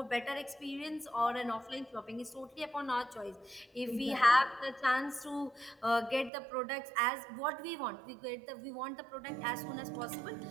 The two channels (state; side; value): drops out; left; at 6.3 s